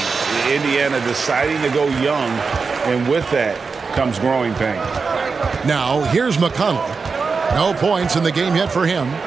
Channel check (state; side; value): quieter; left; 4.8 dB